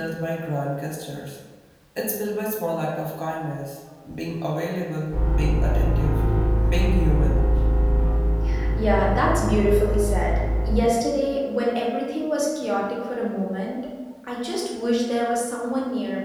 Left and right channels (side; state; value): both; identical; correlation 1.00